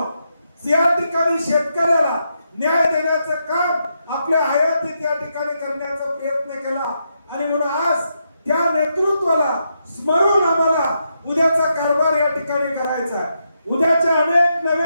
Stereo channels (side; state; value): both; inverted; correlation -0.82